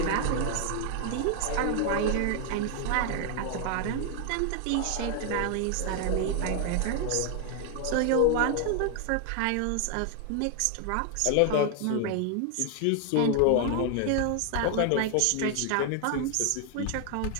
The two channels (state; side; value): different; both; correlation 0.00